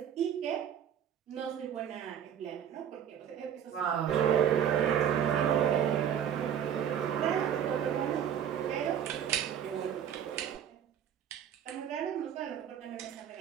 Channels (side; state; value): left; quieter; 9.2 dB